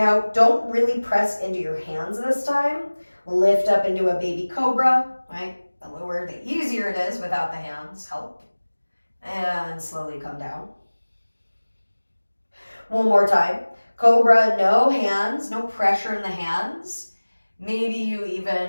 don't really press into your hands this time. Lift up into a baby cobra, right? The lower, the easier it is without the hands help. And slowly come down. One more time. Cobra, no hands, no pressure in the hands. Maybe you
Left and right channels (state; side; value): inverted; both; correlation -1.00